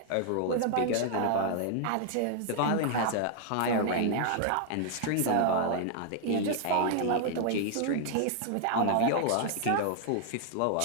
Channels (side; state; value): both; different; correlation 0.00